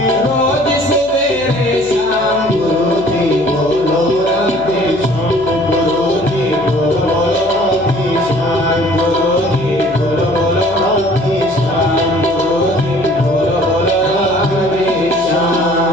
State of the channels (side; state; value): left; noise; hum, 20 dB below the sound